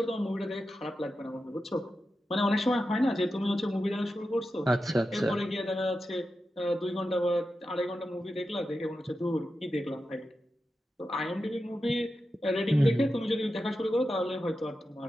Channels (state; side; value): normal; both; correlation 0.90